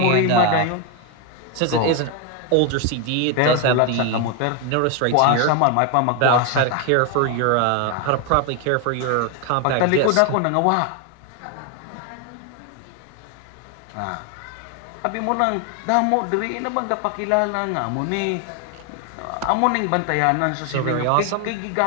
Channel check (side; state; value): both; different; correlation 0.01